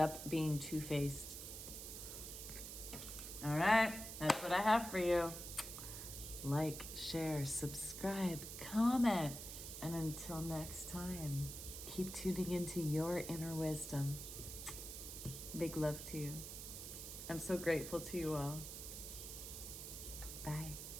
being two-faced. All right, that's what I have for you. Like, share, subscribe, comment. And until next time, keep tuning into your inner wisdom. Big love to you. I'm so grateful to you all. Bye.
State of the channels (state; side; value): noise; right; hiss, 8 dB below the sound